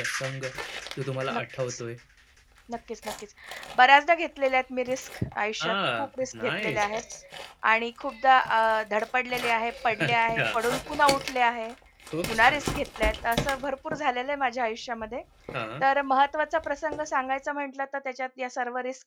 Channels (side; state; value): both; identical; correlation 1.00